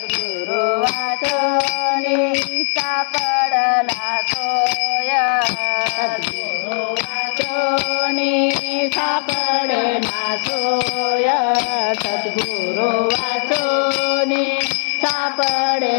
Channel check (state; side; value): silent; right; 57 dB below the other